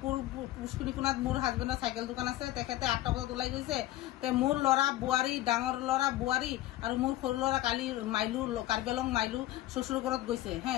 পুষ্পিনীকুণাত মোৰ হাজবেণ্ডৰ চাইকেল দোকান আছে, তেখেতে 8টা বজাত ওলাই গৈছে। তে মোৰ ল'ৰা বোৱাৰী, ডাঙৰ ল'ৰা বোৱাৰী আৰু মোৰ সৰু ল'ৰা কালি মাইলু কাৰ্বিআলং মাইলু শ্বশুৰ ঘৰত গৈছে।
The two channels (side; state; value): right; quieter; 15.4 dB